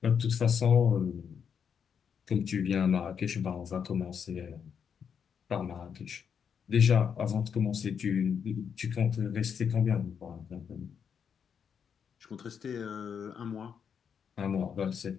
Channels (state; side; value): quieter; right; 7.2 dB